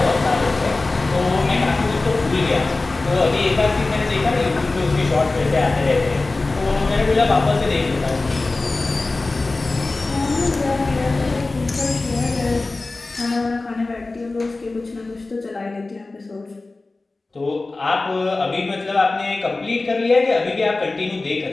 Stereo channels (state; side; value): quieter; right; 3.3 dB